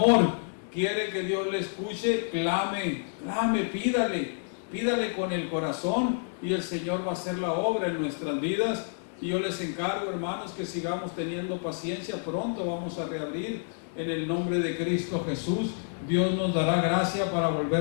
Quiere que Dios le escuche, clame, pídale con el corazón, y el Señor va a hacer la obra en nuestras vidas. Y yo les encargo, hermanos, que sigamos teniendo paciencia. Pronto vamos a reabrir en el nombre de Cristo Jesús. Dios nos dará gracia para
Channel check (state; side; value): silent; right; digital silence